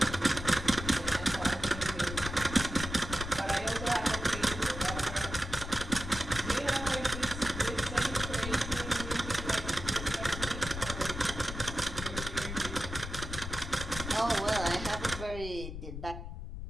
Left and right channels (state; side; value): noise; left; rumble, 7 dB below the sound